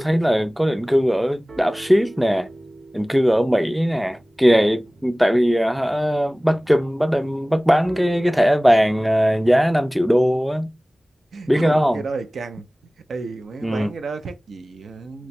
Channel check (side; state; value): both; normal; correlation 0.98